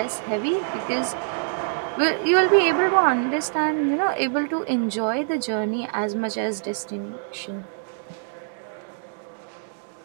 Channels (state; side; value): silent; left; digital silence